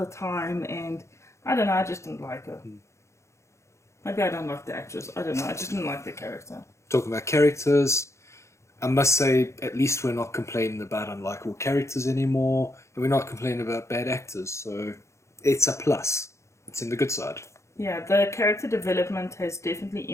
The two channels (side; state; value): right; late; 0.14 ms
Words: time, and I don't know, I just didn't like her. Maybe I don't like the actress. I don't know, I just didn't like the character. Talking about characters, I must say, at least we're not complaining about unlikable characters anymore, and we're not complaining about bad actors, so it's a plus. It's in the good side. Yeah, the character development has definitely